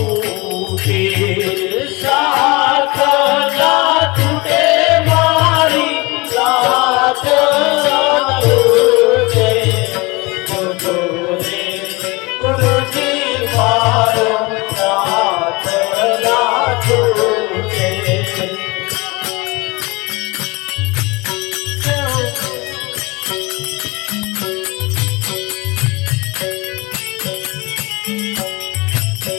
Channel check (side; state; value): right; quieter; 25.0 dB